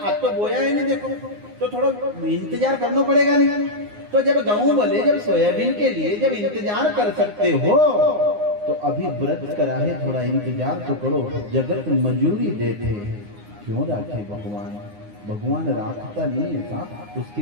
तो बोया है नहीं देखो, तो थोड़ा इंतजार करना पड़ेगा नहीं। तो जब गेहूं बोले, जब सोयाबीन के लिए जब इंतजार कर सकते हो तो अभी व्रत करा है, थोड़ा इंतजार तो करो। जगत मजूरी देते क्यों राखे भगवान? भगवान राखता नहीं है साहब, उसकी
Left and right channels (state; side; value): late; left; 9.7 ms